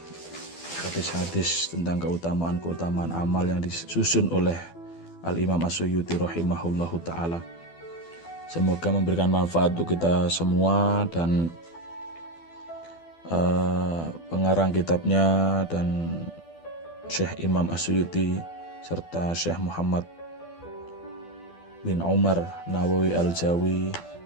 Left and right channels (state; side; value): late; right; 12 ms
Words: hadis-hadis tentang keutamaan amal yang disusun oleh Al-Imam As-Suyuti rahimahullahu ta'ala. Semoga memberikan manfaat untuk kita semua, dan pengarang kitabnya dan Syekh Imam As-Suyuti serta Syekh Muhammad bin Umar Nawawi Al-Jawi